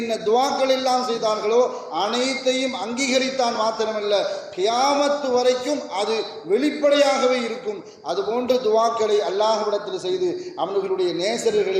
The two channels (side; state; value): both; identical; correlation 1.00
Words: துவாக்கள் எல்லாம் செய்தார்களோ அனைத்தையும் அங்கீகரித்தான். மாத்திரமல்ல, கியாமத்து வரைக்கும் அது வெளிப்படையாகவே இருக்கும். அதுபோன்ற துவாக்களை அல்லாஹ்விடத்தில் செய்து அவர்களுடைய